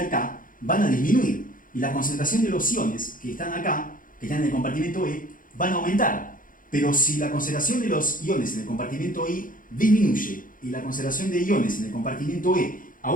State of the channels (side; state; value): right; late; 0.40 ms